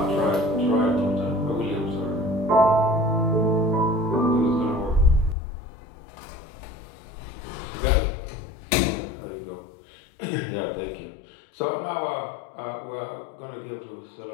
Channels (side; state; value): right; drops out; at 5.4 s